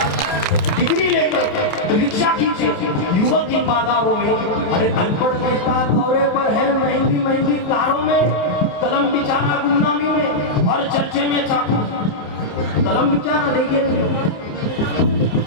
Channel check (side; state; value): right; late; 28 ms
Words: डिग्री लेकर रिक्शा खींचे युवक इन बाजारों में, अरे अनपढ़ नेता दौरे पर है महंगी महंगी कारों में। कलम बिचाना गुमनामी में और चर्चे में चाकू, कलम बिचाना देखिए,